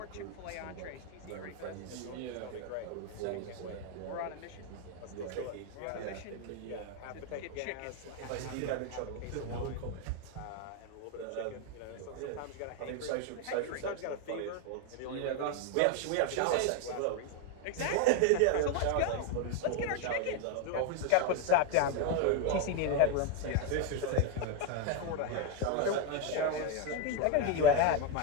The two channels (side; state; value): both; different; correlation 0.01